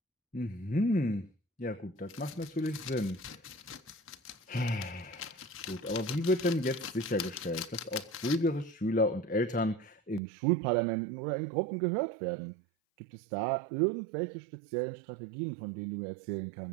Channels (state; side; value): drops out; left; at 10.2 s